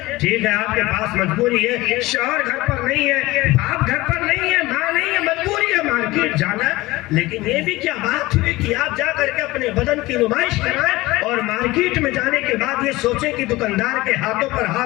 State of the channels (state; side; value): quieter; right; 19.7 dB